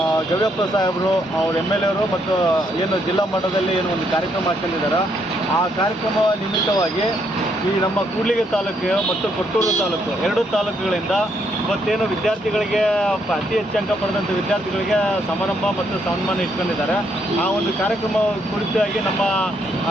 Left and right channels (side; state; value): both; normal; correlation 0.73